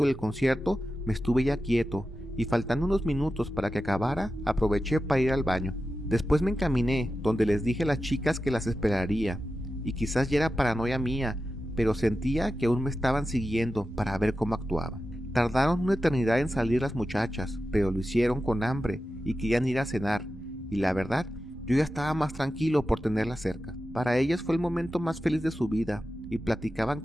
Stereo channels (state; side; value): normal; both; correlation 0.92